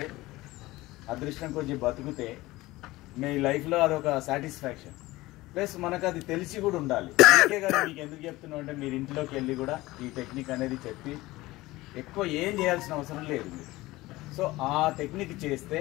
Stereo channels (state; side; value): quieter; right; 19.1 dB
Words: అదృష్టం కొంచెం బతుకుతే మీ లైఫ్లో అదొక సాటిస్ఫాక్షన్. ప్లస్ మనకు అది తెలిసి కూడా ఉండాలి. అందుకే కదా మీకు ఎందుకు చెప్తున్నాం అంటే మీరు ఇంట్లోకి వెళ్ళి కూడా ఈ టెక్నిక్ అనేది చెప్పి ఎక్కువ ఏం చేయాల్సిన అవసరం లేదు మీరు. సో ఆ టెక్నిక్ చేస్తే